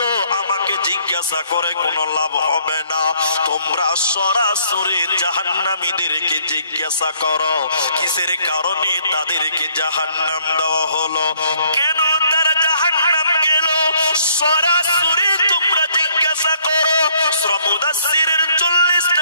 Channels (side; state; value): both; inverted; correlation -0.64